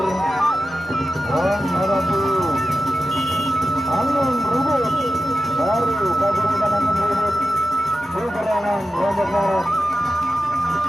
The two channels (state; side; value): normal; both; correlation 0.92